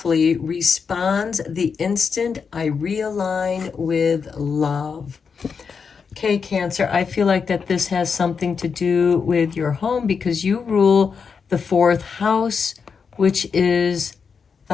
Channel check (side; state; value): right; quieter; 5.8 dB